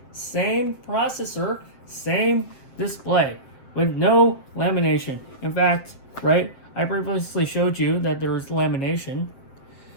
same processor, same display, with no lamination. In fact, right, I previously showed you that there was lamination,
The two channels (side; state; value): right; late; 7.6 ms